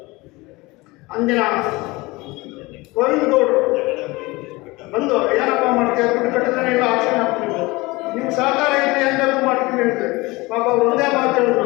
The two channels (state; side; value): quieter; right; 22.5 dB